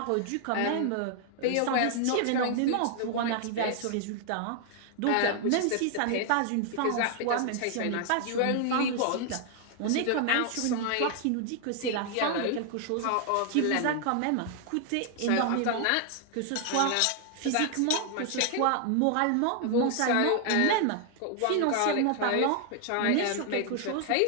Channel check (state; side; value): different; both; correlation 0.00